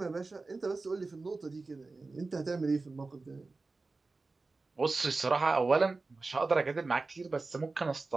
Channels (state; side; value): quieter; left; 3.7 dB